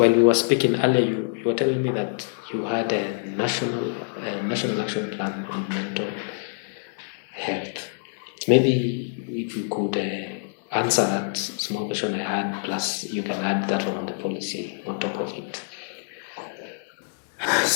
we were speaking earlier, you were telling me that you had a national action plan on mental health. Maybe if you could answer that small question I had, plus you can add that one on the policy on top of it.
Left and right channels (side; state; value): right; silent; digital silence